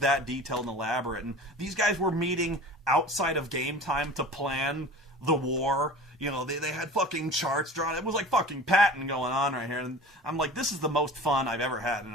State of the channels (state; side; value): normal; both; correlation 0.39